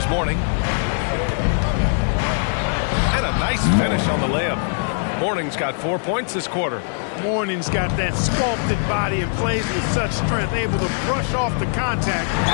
Mourning. And a nice finish on the layup. Mourning's got 4 points this quarter. Mourning's got that sculpted body and plays with such strength, able to brush off the contact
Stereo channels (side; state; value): right; silent; 65 dB below the other